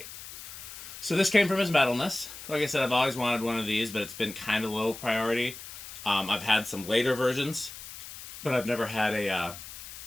So this came from his metalness. Like I said, I've always wanted one of these, but it's been kind of low priority. I've had some later versions, but I've never had a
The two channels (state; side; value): noise; left; hiss, 13 dB below the sound